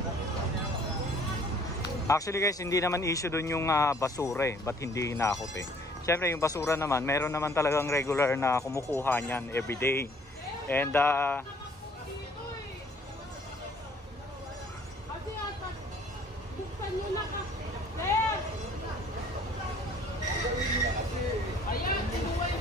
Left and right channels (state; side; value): normal; both; correlation 0.58